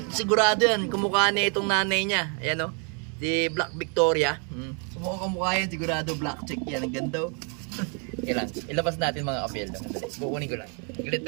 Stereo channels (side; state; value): left; quieter; 38.3 dB